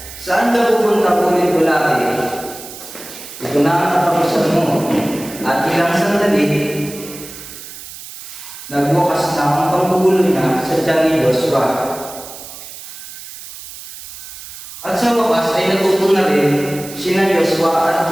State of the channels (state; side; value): noise; right; hiss, 14 dB below the sound